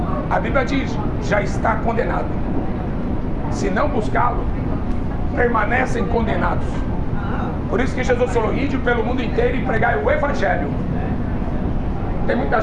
a Bíblia diz: já está condenado. Se não buscá-lo, permanecem condenados. Por isso que Jesus falou: ide pelo mundo inteiro e pregai o Evangelho. Tem muita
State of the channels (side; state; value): both; identical; correlation 1.00